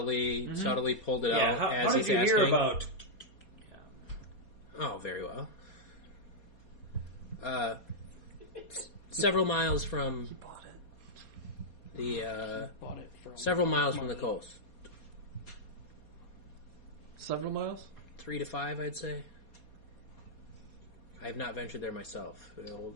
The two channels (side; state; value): right; late; 4.2 ms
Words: pulled it out how as did he's you hear asking? about? Oh, very well. Several miles from Bought it. the Bought it from several miles from the coast. Several miles? 3 to 5, I'd say. I have not ventured there myself.